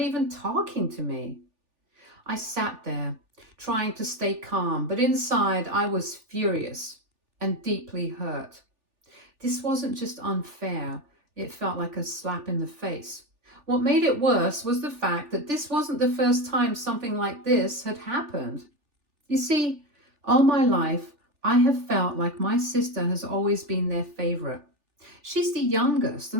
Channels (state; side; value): late; left; 3.4 ms